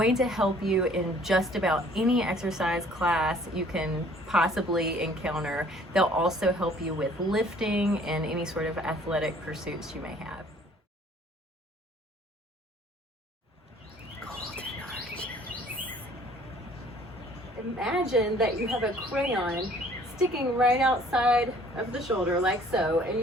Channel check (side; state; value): both; normal; correlation 0.56